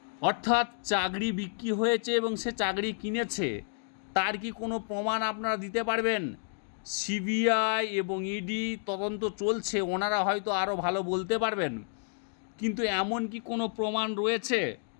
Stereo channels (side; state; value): right; silent; digital silence